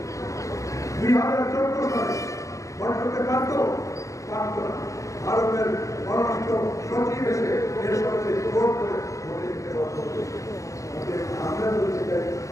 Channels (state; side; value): late; right; 0.16 ms